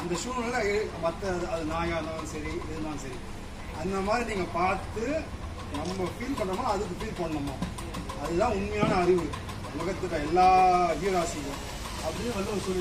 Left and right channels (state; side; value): identical; both; correlation 1.00